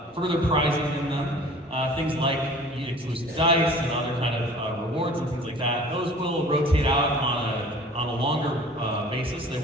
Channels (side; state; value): both; normal; correlation 0.46